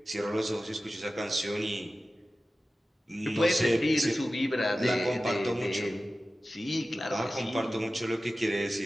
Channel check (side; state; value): both; normal; correlation 0.95